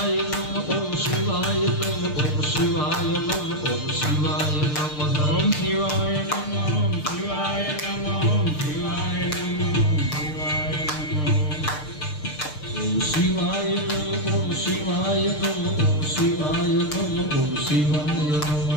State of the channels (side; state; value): right; late; 6.6 ms